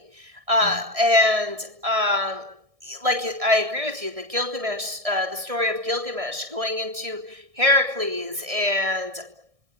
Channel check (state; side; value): late; left; 1.6 ms